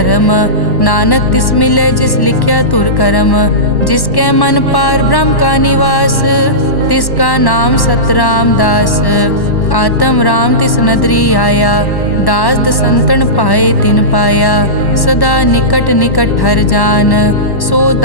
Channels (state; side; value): late; right; 1.1 ms